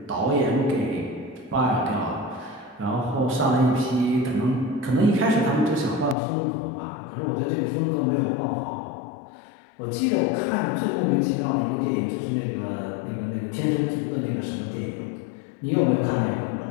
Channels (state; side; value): drops out; right; at 6.2 s